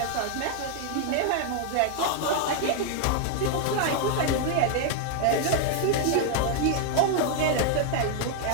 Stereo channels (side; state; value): both; different; correlation 0.00